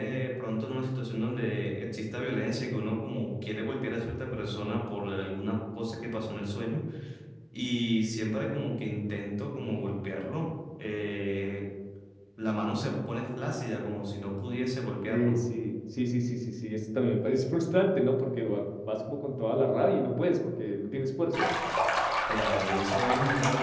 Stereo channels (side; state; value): both; identical; correlation 1.00